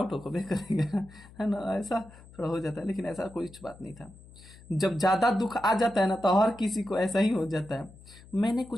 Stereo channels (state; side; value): noise; left; hum, 21 dB below the sound